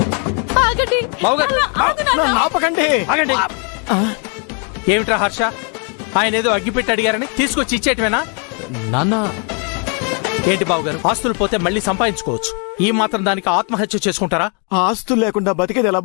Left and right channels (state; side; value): quieter; right; 38.3 dB